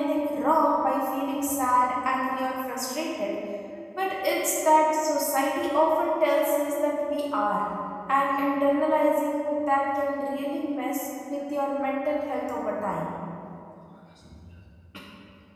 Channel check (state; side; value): identical; both; correlation 1.00